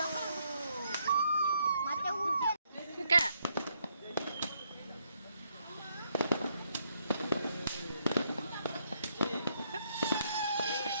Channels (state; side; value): inverted; both; correlation -0.74